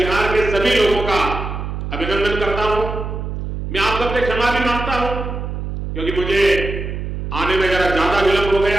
के सभी लोगों का अभिनंदन करता हूं। मैं आप सबसे क्षमा भी मांगता हूं क्योंकि मुझे आने में जरा ज्यादा विलंब हो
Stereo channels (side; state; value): right; noise; hum, 5 dB below the sound